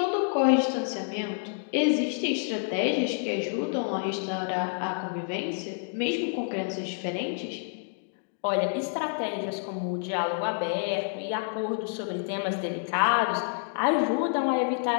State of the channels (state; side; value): silent; right; 59 dB below the other